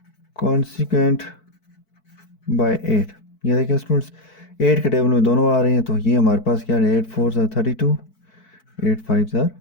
consequent by 8, ये देखें स्टूडेंट्स 8 के टेबल में दोनों आ रहे हैं, तो ये हमारे पास क्या है 8 4 ज़ार 32, 8 5 ज़ार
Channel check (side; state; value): right; late; 4.6 ms